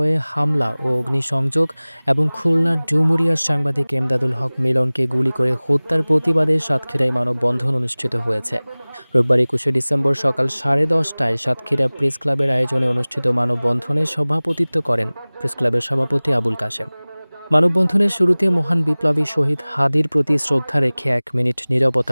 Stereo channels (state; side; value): inverted; both; correlation -1.00